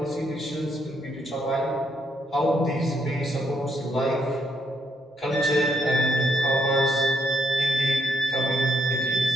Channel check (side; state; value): both; normal; correlation 0.76